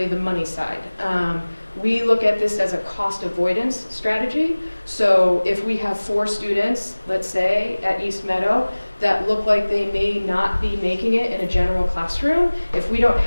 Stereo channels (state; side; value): inverted; both; correlation -1.00